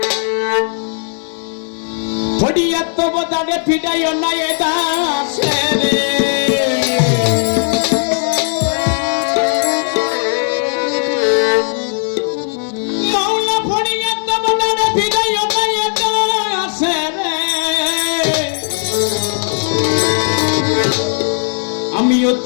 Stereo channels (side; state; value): right; silent; 66 dB below the other